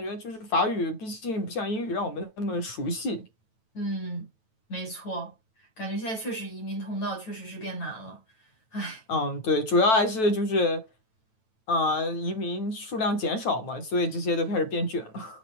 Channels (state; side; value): late; right; 9.1 ms